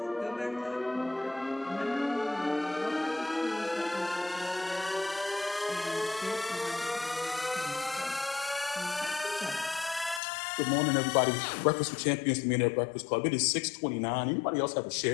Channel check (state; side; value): drops out; right; at 10.2 s